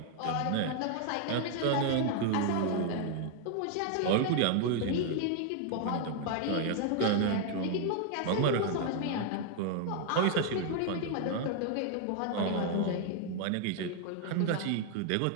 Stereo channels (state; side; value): different; both; correlation 0.00